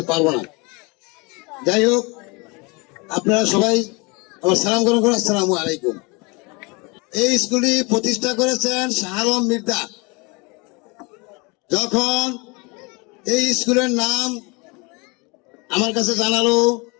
পারবো না। যাই হোক, আপনারা সবাই আমার সালাম গ্রহণ করুন। আসসালামু আলাইকুম। এই স্কুলটি প্রতিষ্ঠা করেছেন শাহ আলম মির্জা। যখন এই স্কুলের নাম আমার কাছে জানালো,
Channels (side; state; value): right; quieter; 28.2 dB